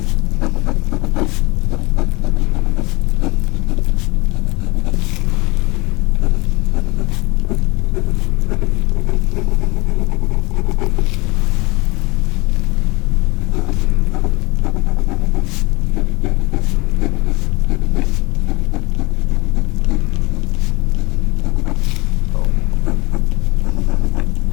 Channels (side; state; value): right; quieter; 24.4 dB